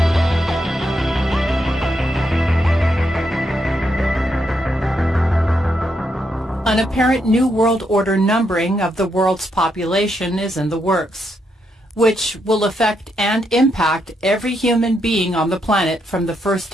an apparent New World Order numbering of the world's population is in the works, which will affect and impact every human being on the planet from the first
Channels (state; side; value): normal; both; correlation 0.80